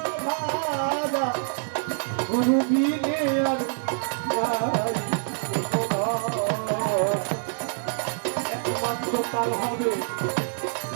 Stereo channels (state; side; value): silent; left; digital silence